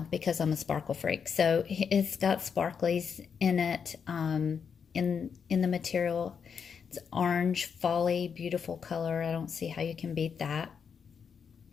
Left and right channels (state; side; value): quieter; right; 6.6 dB